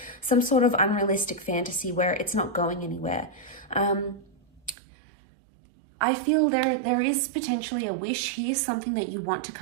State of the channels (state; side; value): drops out; left; at 4.8 s